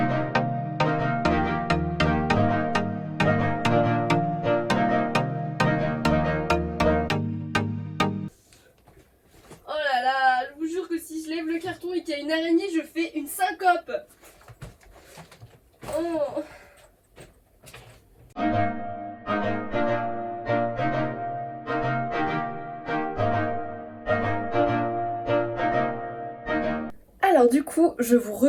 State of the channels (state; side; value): identical; both; correlation 1.00